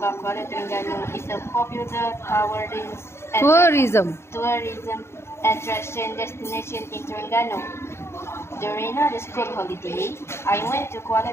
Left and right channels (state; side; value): late; right; 0.12 ms